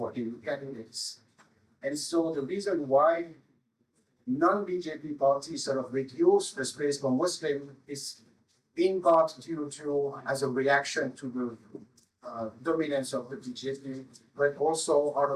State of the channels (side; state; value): both; identical; correlation 1.00